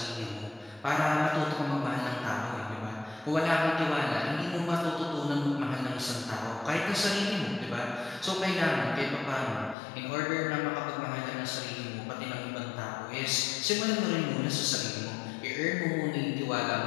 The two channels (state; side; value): drops out; right; at 9.8 s